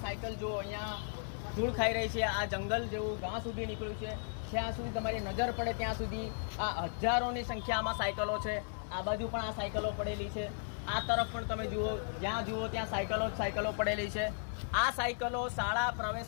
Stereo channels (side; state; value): right; silent; 54 dB below the other